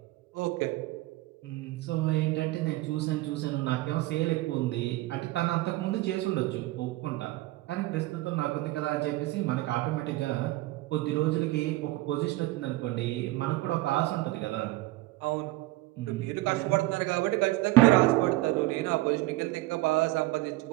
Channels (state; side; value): quieter; left; 19.0 dB